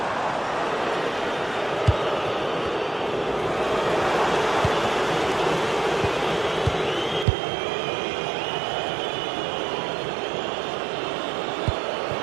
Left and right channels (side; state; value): left; drops out; at 7.2 s